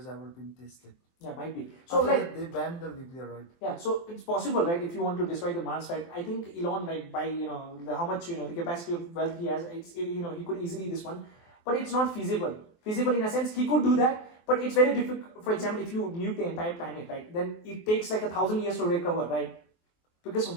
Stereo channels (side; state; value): right; late; 23 ms